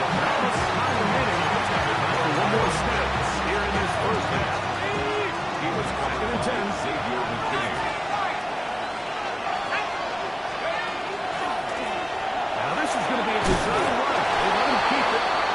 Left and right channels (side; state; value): both; identical; correlation 1.00